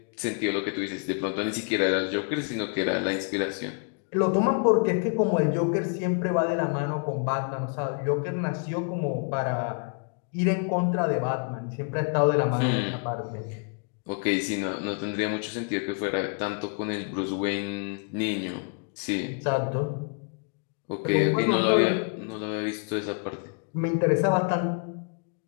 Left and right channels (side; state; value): right; quieter; 39.6 dB